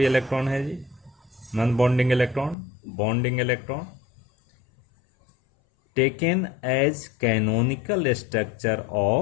electron है जी, non bonding electron, bonding electron, taken as canonical structure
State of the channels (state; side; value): drops out; right; at 2.6 s